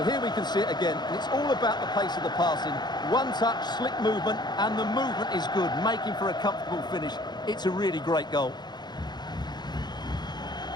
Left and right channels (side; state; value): right; late; 0.21 ms